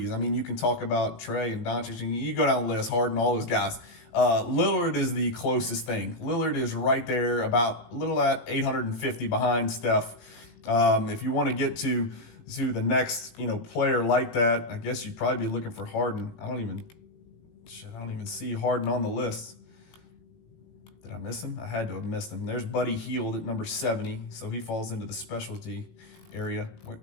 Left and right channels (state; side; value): late; right; 18 ms